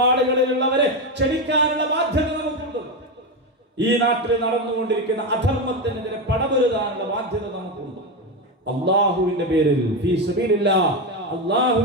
ക്ഷണിക്കാനുള്ള ബാധ്യത നമുക്കുണ്ട്. ഈ നാട്ടിൽ നടന്നുകൊണ്ടിരിക്കുന്ന അധർമ്മത്തിനെതിരെ പടപൊരുതാനുള്ള ബാധ്യത നമുക്കുണ്ട്. അള്ളാഹുവിന്റെ പേരിൽ, ഫീ സബീലില്ലാഹ്,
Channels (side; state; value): both; normal; correlation 0.12